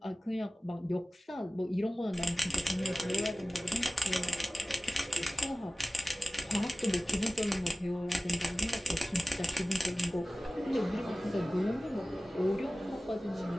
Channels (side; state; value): both; normal; correlation 0.96